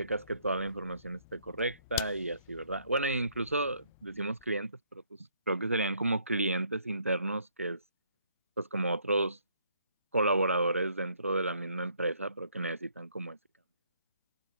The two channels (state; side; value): inverted; both; correlation -0.67